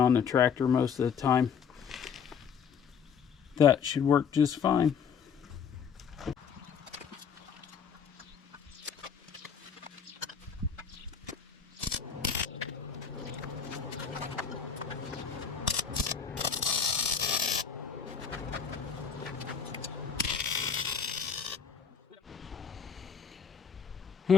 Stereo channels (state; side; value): quieter; right; 6.9 dB